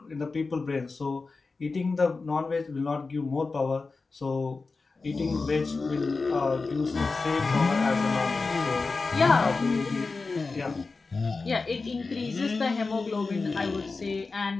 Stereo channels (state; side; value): quieter; right; 4.0 dB